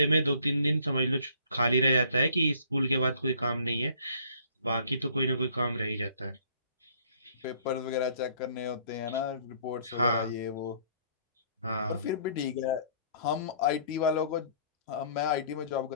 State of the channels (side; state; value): both; inverted; correlation -0.59